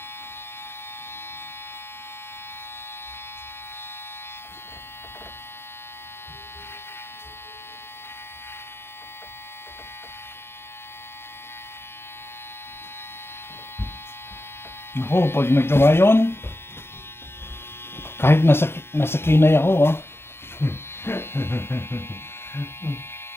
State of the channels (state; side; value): late; right; 0.12 ms